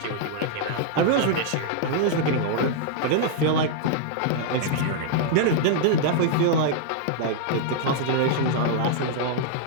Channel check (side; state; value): both; different; correlation -0.01